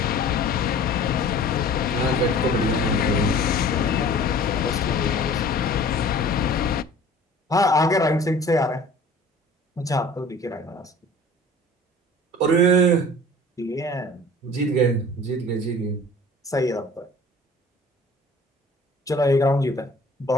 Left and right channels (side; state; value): both; normal; correlation 0.46